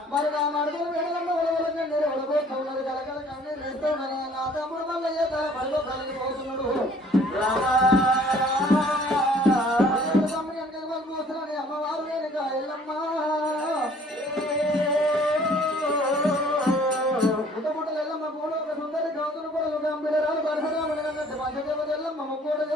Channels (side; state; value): both; normal; correlation 0.56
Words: మరి నా మడుగులు వేడలమ్మ ఉడవలకి నేను ఉడబోతున్నది కలకల కన్నీరు వేస్తున్నాను నా తమ్ముడు మల్లయ్య తన పడిలో కలిగిపోతున్నాడు తమ్ముడు వెనక పోతున్నాడు అమ్మవారు రేణుకయ్యమ్మ పుట్టపుట్టలు ఎల్లమ్మ కూడా ఒక సుందరి గౌతులు కూడా గంభీరాలు పరశురాముడు కన్నట్టు పంచదేవత ఎల్లమ్మ ముక్కోట